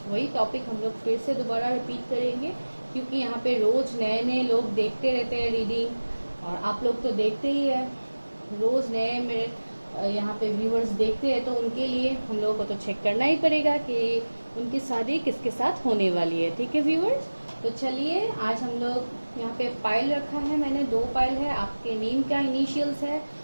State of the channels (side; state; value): both; inverted; correlation -1.00